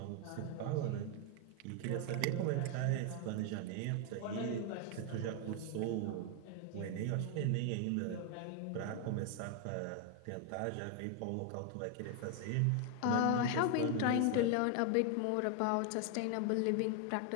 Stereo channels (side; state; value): both; different; correlation 0.01